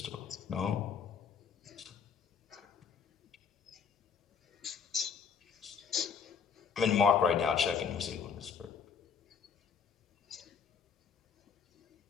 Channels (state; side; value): quieter; right; 6.5 dB